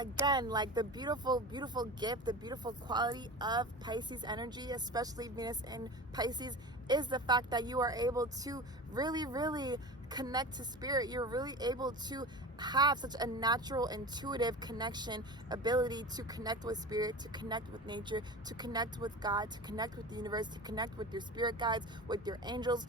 like the beautiful, beautiful gift, the beautiful quality of Pisces energy, especially Venus in Pisces, is the fact that you are able to really, really connect to spirit. You're really able to have such a natural, intuitive connection, ability to connect with spirit, to connect with nature, to connect with God, to connect with the universe, to connect with your spirit guides, with your angels,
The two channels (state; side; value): normal; both; correlation 0.31